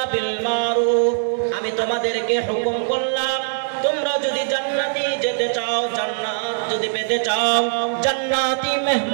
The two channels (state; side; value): silent; left; 59 dB below the other